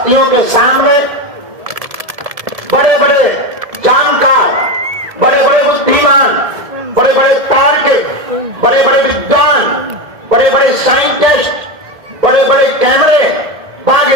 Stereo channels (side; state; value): left; late; 1.7 ms